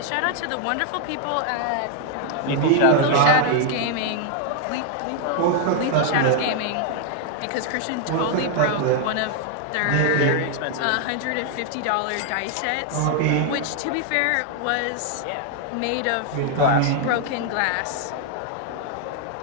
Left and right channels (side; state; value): both; different; correlation 0.00